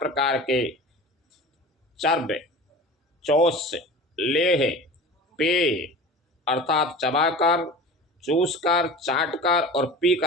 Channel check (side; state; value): both; normal; correlation 0.36